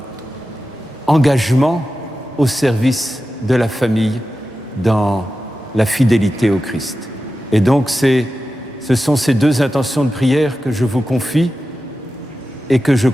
engagement au service de la famille, dans la fidélité au Christ. Et donc ce sont ces deux intentions de prière que je vous confie et que je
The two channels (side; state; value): both; normal; correlation 0.93